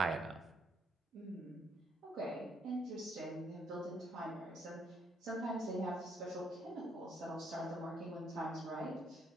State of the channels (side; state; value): both; normal; correlation 0.71